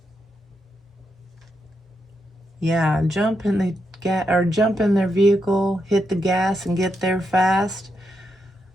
Yeah, jump in their vehicle, hit the gas and get there fast.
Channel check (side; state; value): both; normal; correlation 0.83